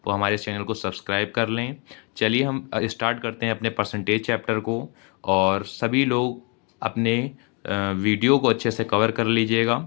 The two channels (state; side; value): quieter; right; 34.3 dB